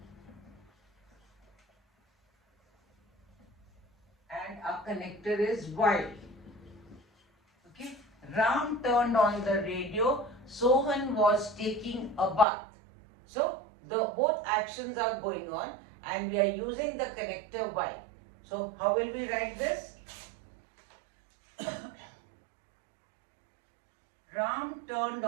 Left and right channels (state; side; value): drops out; left; at 12.5 s